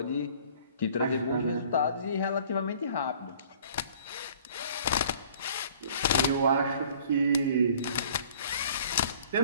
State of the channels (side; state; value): both; inverted; correlation -0.52